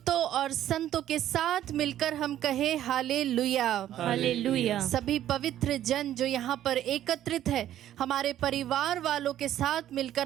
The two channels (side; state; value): left; quieter; 12.0 dB